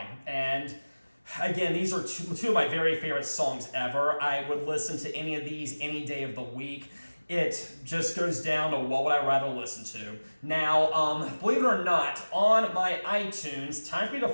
And again, these are two of my very favorite songs ever. I would listen to any of these any day of the week. It just goes down to what would I rather listen to. Now, believe it or not, on my iTunes, Time for Me to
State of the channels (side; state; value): both; inverted; correlation -1.00